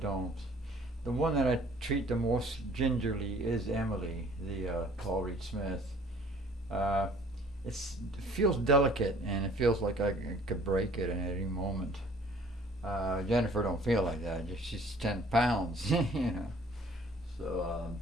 The one that I treat the most gingerly is Emily, the Paul Reed Smith. Uh, it feels delicate, and it feels like I could break it at any moment. Jennifer don't feel like that. She's 10 pounds, you know. So,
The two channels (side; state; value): both; normal; correlation 0.55